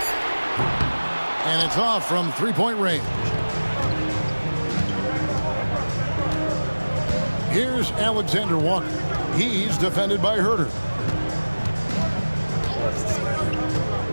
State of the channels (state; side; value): inverted; both; correlation -1.00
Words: And it's off from three-point range. Here's Alexander Walker. He's defended by Herter.